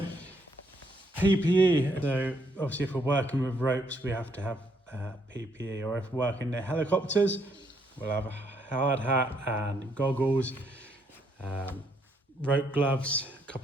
PPE, so obviously if we're working with ropes we have to have PPE, or if we're working in helicopters we'll have a hard hat and goggles, rope gloves, a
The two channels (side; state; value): both; normal; correlation 0.72